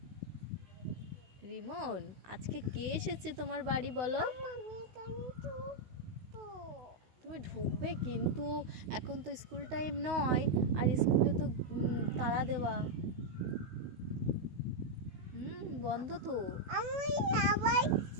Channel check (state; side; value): late; left; 16 ms